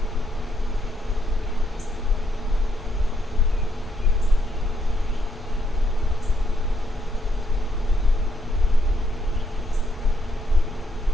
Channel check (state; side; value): normal; both; correlation 0.76